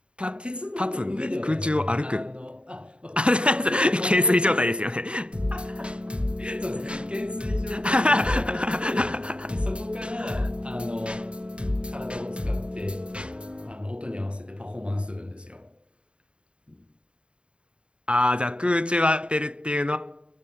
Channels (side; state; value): left; late; 0.055 ms